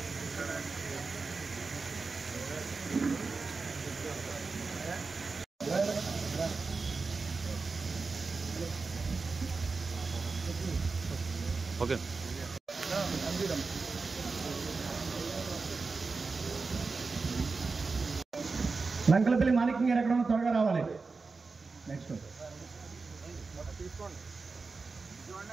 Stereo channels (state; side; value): quieter; left; 4.3 dB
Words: ఓకే లంకలపల్లి మాణిక్యం గారు ఎక్కడ త్వరగా రావాలి. నెక్స్ట్